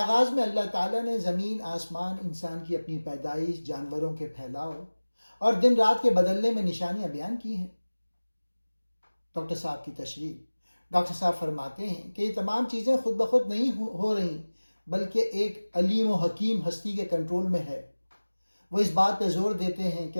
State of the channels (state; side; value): inverted; both; correlation -1.00